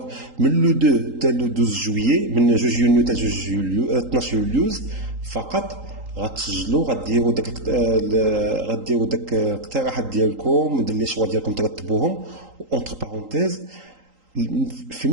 من لو 2 حتى لو 12 جويي، من 2 يونيو حتى 12 يوليوز فقط غتسجلوا، غديروا داك الاقتراحات ديالكم، لي شوا ديالكم ترتبوهم، اونتر بارونتيز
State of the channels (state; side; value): late; left; 3.8 ms